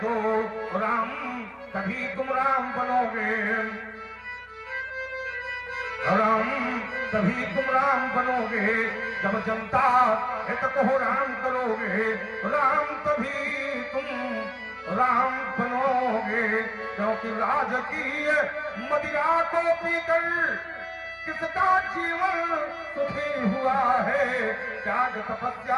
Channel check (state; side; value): identical; both; correlation 1.00